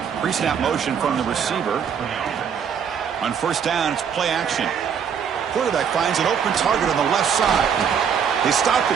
Pre-snap motion from the receiver. On 1st down, it's play action. Quarterback finds an open target on the left side. They stop the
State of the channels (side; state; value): left; quieter; 7.5 dB